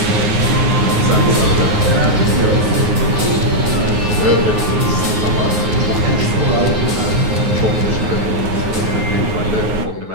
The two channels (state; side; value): late; left; 9.5 ms